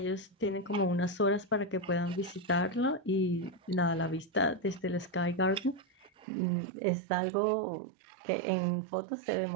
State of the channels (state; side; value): drops out; left; at 6.2 s